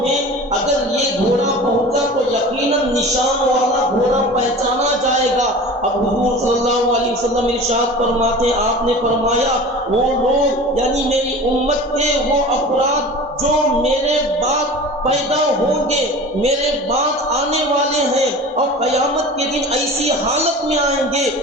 میں اگر یہ گھوڑا پہنچا تو یقیناً نشان والا گھوڑا پہچانا جائے گا۔ اب حضور صلی اللہ علیہ وسلم ارشاد فرماتے ہیں آپ نے فرمایا وہ لوگ یعنی میری امت کے وہ افراد جو میرے بعد پیدا ہوں گے، میرے بعد آنے والے ہیں، اور قیامت کے دن ایسی حالت میں آئیں گے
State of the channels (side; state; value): both; normal; correlation 0.37